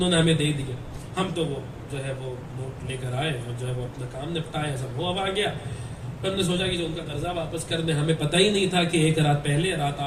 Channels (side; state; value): both; identical; correlation 1.00